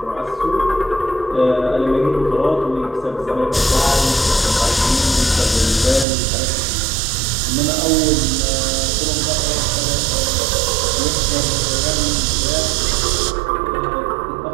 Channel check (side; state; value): left; drops out; at 6.1 s